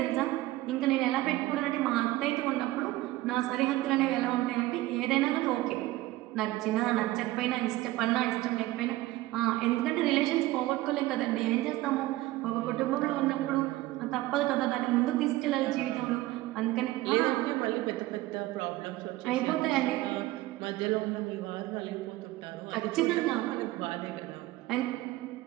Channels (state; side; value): quieter; left; 17.6 dB